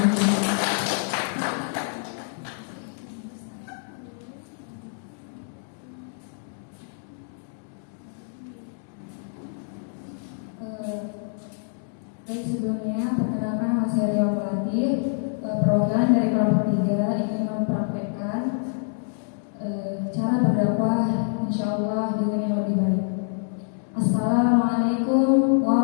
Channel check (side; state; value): right; silent; digital silence